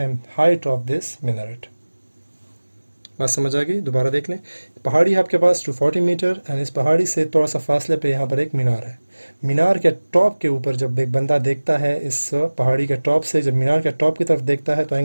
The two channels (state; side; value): inverted; both; correlation -1.00